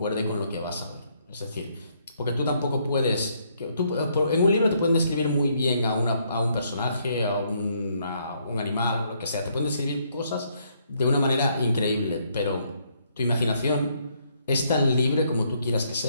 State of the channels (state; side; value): inverted; both; correlation -0.71